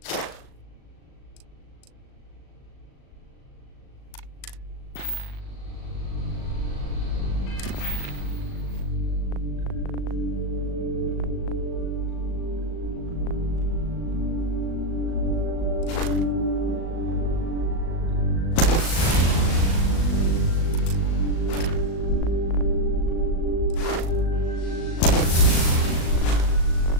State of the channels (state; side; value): late; right; 37 ms